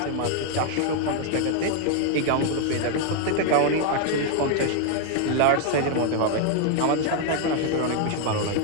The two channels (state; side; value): different; both; correlation 0.00